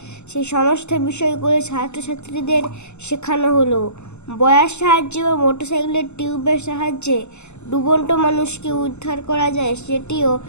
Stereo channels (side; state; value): right; late; 0.82 ms